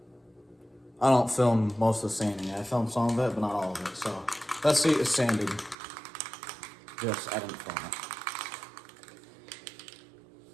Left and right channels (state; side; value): drops out; left; at 5.8 s